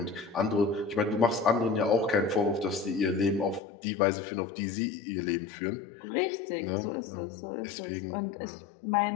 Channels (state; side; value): drops out; right; at 3.6 s